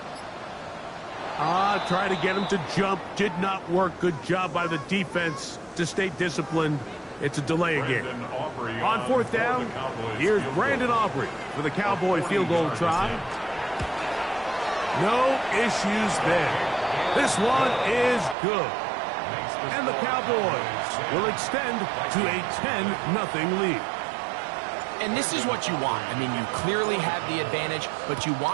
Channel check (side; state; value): left; drops out; at 18.4 s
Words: Try to get him to jump. Did not work. Good job by the defense to stay disciplined. It's a delay again. On 4th down, here's Brandon Aubrey for the Cowboy field goal try. No issues there. This one is good. And the Cowboys will extend to a 10-0 lead. And this is what you want. I mean, you clearly have the advantage, but you